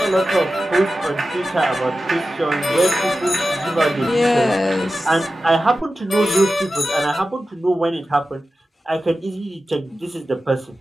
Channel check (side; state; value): both; normal; correlation 0.93